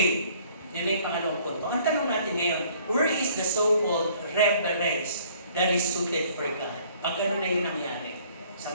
Yan ay pangalawang punto. Ang tanong natin ngayon, where is the so-called reverence that is suited for God? Pag gano'n na yung nangyari sa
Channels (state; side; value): inverted; both; correlation -0.58